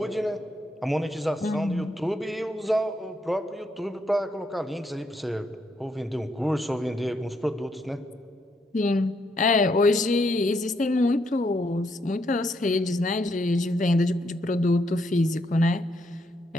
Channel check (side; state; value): both; normal; correlation 0.76